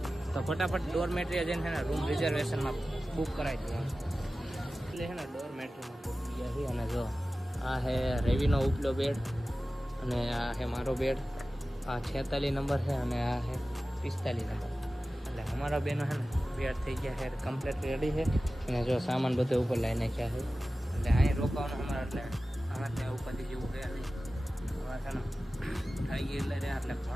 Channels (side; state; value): both; normal; correlation 0.96